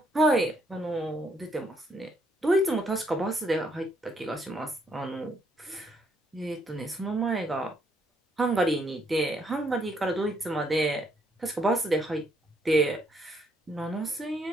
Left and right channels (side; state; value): both; normal; correlation 0.72